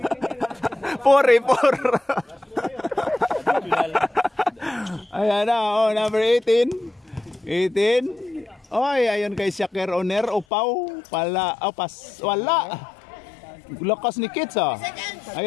Ayan na, number 18. Oy, ayun kay Shakir Oner. Upaw. Wala. Lakas ni Kits ah.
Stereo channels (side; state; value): right; drops out; at 10.5 s